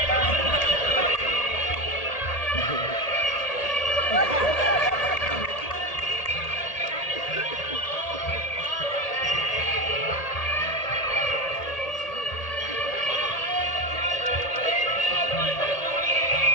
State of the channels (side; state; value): right; late; 1.8 ms